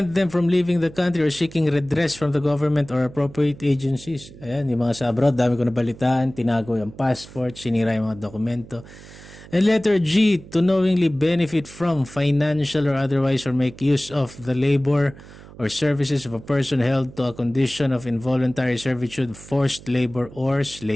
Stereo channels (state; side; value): noise; right; hum, 19 dB below the sound